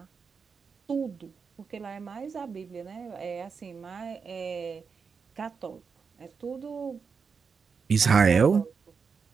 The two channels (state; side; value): quieter; left; 5.6 dB